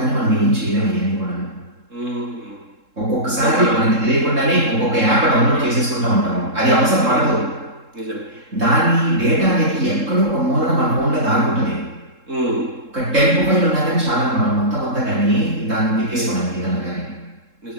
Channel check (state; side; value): late; left; 3.7 ms